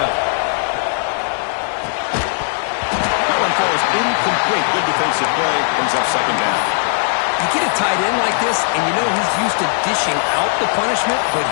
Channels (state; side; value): silent; right; 68 dB below the other